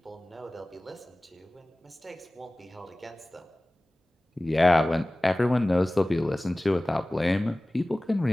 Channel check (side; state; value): both; normal; correlation 0.98